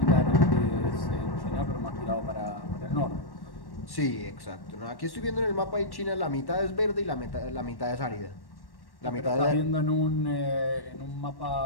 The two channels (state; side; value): late; right; 1.1 ms